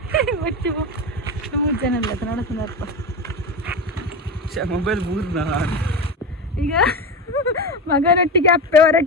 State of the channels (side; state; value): both; normal; correlation 0.21